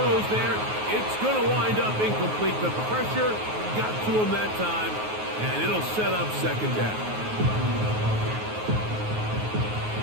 there. It's going to wind up incomplete. The pressure got to him that time, and it'll set up 2nd down.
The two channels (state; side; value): late; left; 9.4 ms